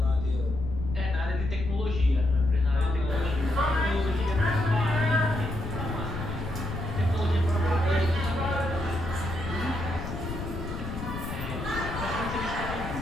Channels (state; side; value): noise; left; rumble, 6 dB below the sound